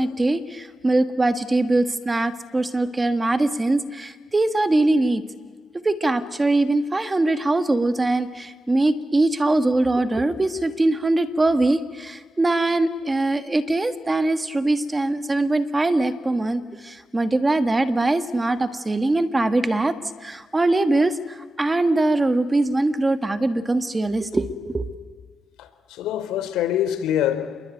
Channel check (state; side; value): normal; both; correlation 0.93